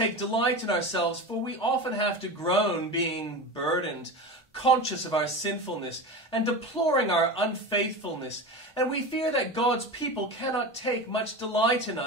delight in ourselves, for we often have to groan, being burdened, conscious of our sinfulness, and deploring our unfaithfulness. And we fear that God's people cannot take much delight in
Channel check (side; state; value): both; normal; correlation 0.27